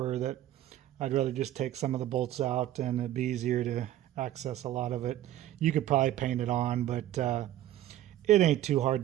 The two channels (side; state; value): left; quieter; 13.1 dB